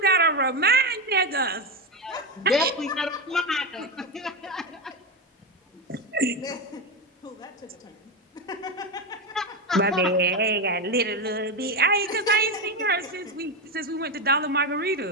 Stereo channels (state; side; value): normal; both; correlation 0.13